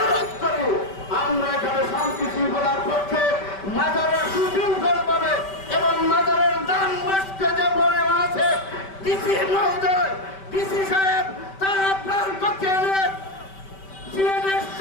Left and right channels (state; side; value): late; right; 5.2 ms